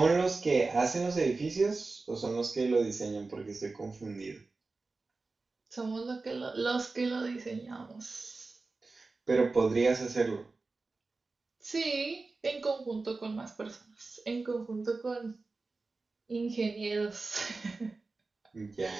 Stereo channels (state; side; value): quieter; left; 3.7 dB